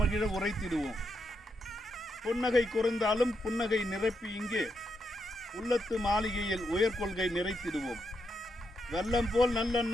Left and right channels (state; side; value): normal; both; correlation 0.82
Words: உரைத்திடுவோம். புன்னகை குறைந்தாலும் புன்னகை நிரப்பி இங்கே உள்ளத்து மாளிகையில் உயர்கொள்கை நிறைத்திடுவோம். வெள்ளம் போல்